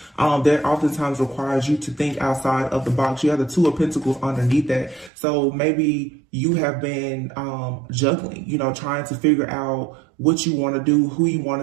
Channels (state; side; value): drops out; left; at 5.1 s